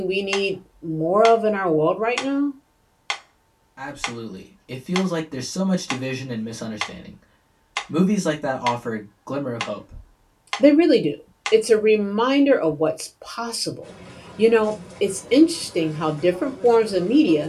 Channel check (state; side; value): identical; both; correlation 1.00